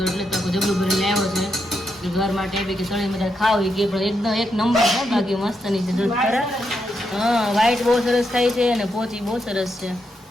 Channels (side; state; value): both; normal; correlation 0.82